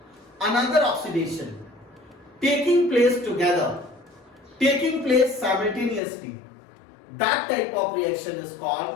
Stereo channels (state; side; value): drops out; right; at 6.0 s